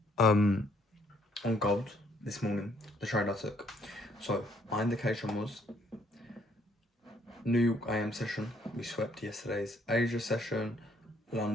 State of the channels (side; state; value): both; normal; correlation 0.66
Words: On gold this morning, the trade I took. So my indication was New York AM session. We swept yesterday's Asia session,